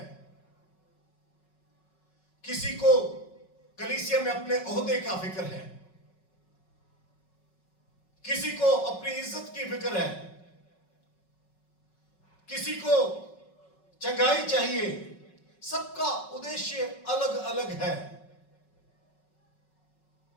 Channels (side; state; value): right; late; 5.4 ms